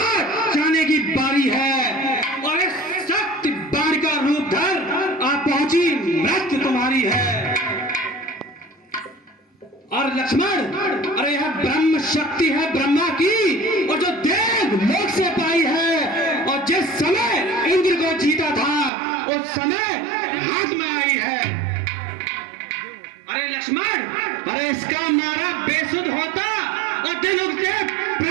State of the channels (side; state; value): left; drops out; at 18.9 s